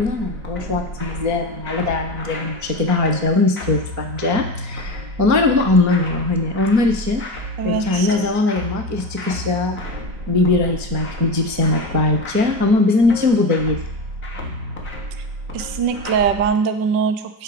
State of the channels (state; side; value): late; left; 4.3 ms